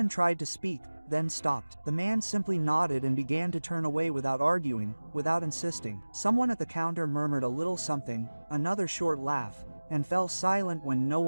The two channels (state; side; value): inverted; both; correlation -1.00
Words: tried to speak, then stopped. The man simply nodded and began to turn away without arguing, without insisting. Someone at the counter murmured a little something, another short laugh, and fell silent when no